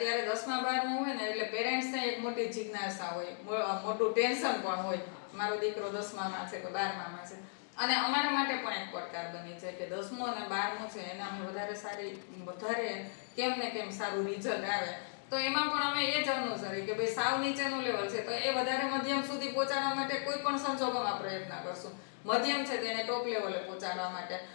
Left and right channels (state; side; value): silent; right; digital silence